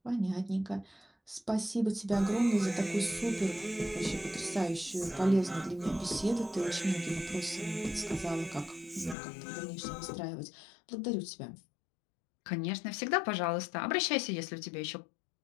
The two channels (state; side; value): drops out; right; at 9.2 s